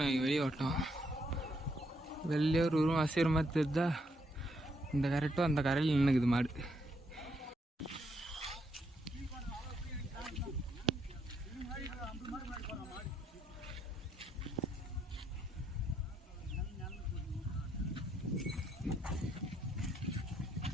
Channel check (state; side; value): normal; both; correlation 0.75